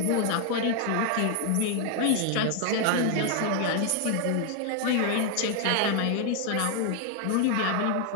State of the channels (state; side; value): different; both; correlation 0.00